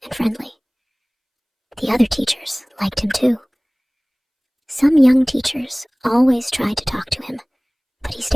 and friendly. The other teachers liked him too. Some young teachers always tried to talk to him, but he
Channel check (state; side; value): identical; both; correlation 1.00